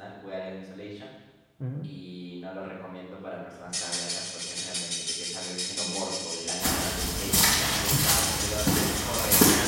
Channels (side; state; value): both; identical; correlation 1.00